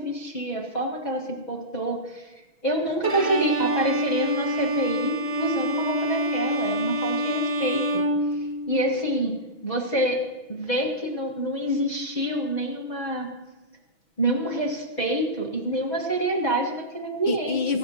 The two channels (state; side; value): late; right; 6.1 ms